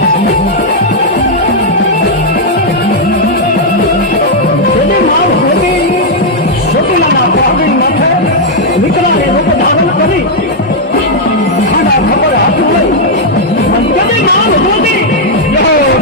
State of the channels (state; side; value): normal; both; correlation -0.03